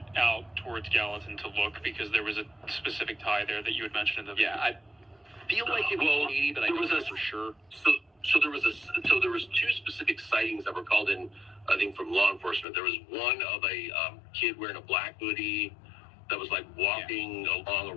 out towards Gallatin to look because there was a specific tie there that you had mentioned in the video. I feel like it was Katie, but I don't know for sure. So there was two specific sightings that were called in, I think, from law enforcement. There was one of a kid wearing a black hoodie that was like walking along a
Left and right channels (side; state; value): right; drops out; at 12.7 s